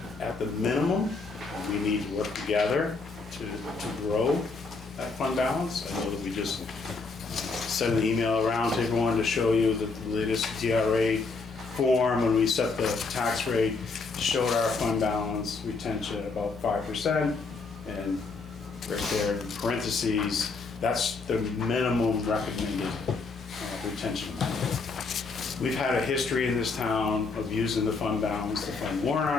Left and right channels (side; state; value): right; quieter; 4.2 dB